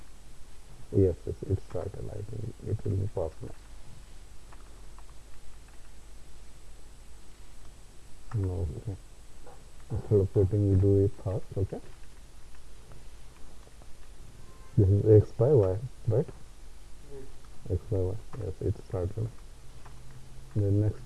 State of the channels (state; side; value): identical; both; correlation 1.00